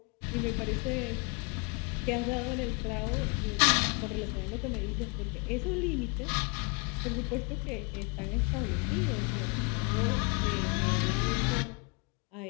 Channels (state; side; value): quieter; right; 31.6 dB